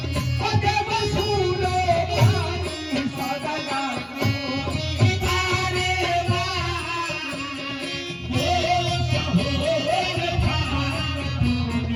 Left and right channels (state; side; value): identical; both; correlation 1.00